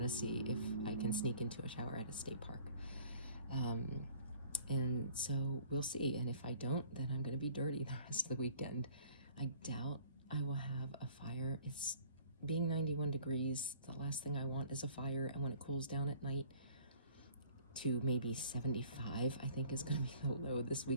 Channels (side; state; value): both; inverted; correlation -0.53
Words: to see if I can sneak into a shower at a state park. And so we'll see. And if I don't, then I'm going to be dirty the rest of the weekend. I doubt I will have a fire. It's being 91 degrees. The last thing I want is a fire. And when it cools down at night to maybe 75, I think is going to be the low this